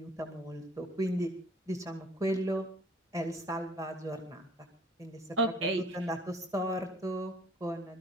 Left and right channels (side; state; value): both; normal; correlation 0.55